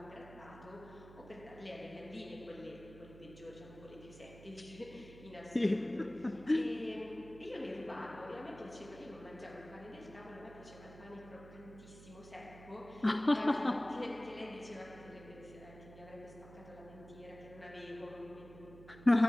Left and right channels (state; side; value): noise; right; hum, 17 dB below the sound